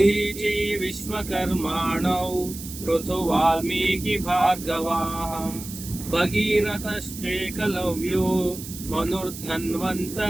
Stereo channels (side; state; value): right; noise; hiss, 12 dB below the sound